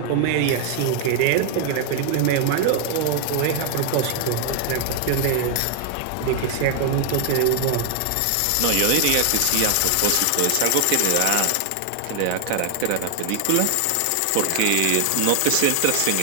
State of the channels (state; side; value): different; both; correlation 0.00